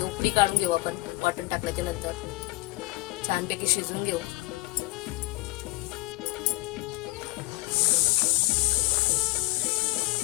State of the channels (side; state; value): right; quieter; 22.0 dB